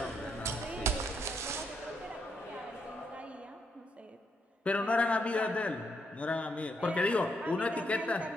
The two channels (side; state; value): both; normal; correlation 0.78